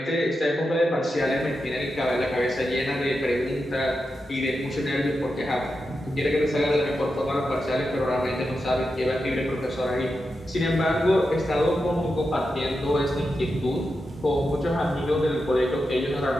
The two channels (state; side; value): normal; both; correlation 0.88